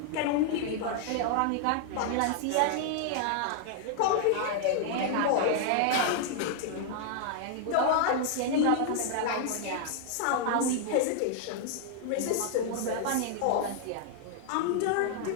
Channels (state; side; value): different; both; correlation 0.00